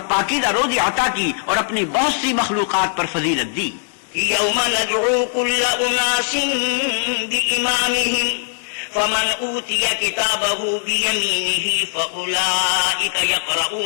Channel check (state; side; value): silent; right; digital silence